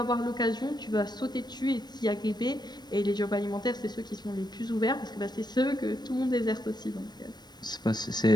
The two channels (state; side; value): late; right; 0.20 ms